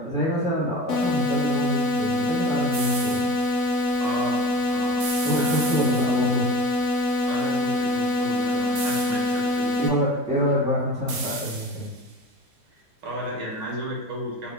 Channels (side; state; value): both; normal; correlation 0.37